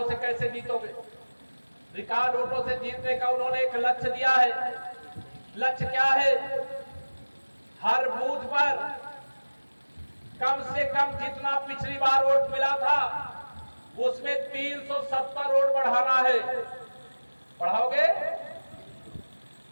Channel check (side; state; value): both; inverted; correlation -1.00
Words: से कैसे जीतोगे? रिकॉर्ड वोटों से जीतने का उन्होंने एक लक्ष्य दिया है। लक्ष्य क्या है? हर बूथ पर कम से कम जितना पिछली बार वोट मिला था उसमें 370 वोट बढ़ाना है। बढ़ाओगे?